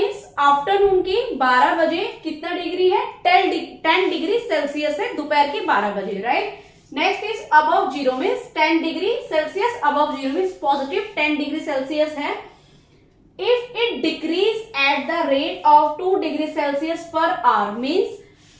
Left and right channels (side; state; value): both; identical; correlation 1.00